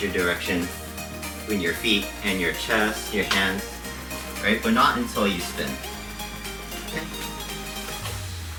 your direction between your feet and your chest, your hands, right? But not until you spin. Okay.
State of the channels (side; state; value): both; identical; correlation 1.00